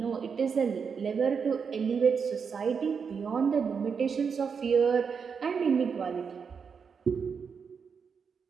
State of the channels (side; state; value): left; quieter; 6.1 dB